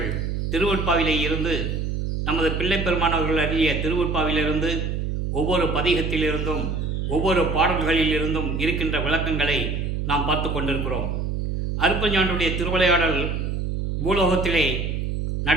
திருவொற்பாவிலே இருந்து நமது பிள்ளை பெருமானவர்கள் அறிய திருவொற்பாவிலிருந்து ஒவ்வொரு பதிகத்திலிருந்தும் ஒவ்வொரு பாடல்களிலிருந்தும் இருக்கின்ற விளக்கங்களை நாம் பார்த்து கொண்டிருக்கிறோம். அருட்பெருஞ்சோதியுடைய திருவிளையாடல் பூலோகத்திலே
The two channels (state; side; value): noise; right; hum, 2 dB below the sound